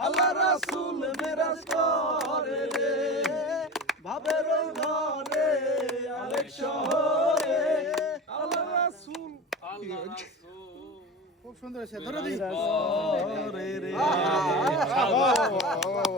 আল্লাহ রাসূল বিরাজ করে রে ভাবের ঘরে আলেক শহরে আল্লাহ রাসূল আল্লাহ রাসূল খুব সুন্দর হয়েছে ধরে দিই করে রে বাহ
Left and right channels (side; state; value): both; normal; correlation 0.30